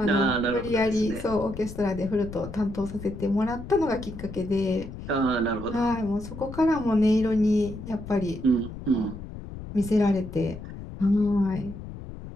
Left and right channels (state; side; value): noise; left; rumble, 11 dB below the sound